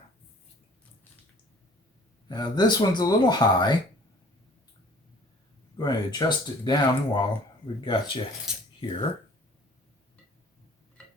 Now this one's a little high. I'm going to adjust it down while we've got you here.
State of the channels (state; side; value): normal; both; correlation 0.51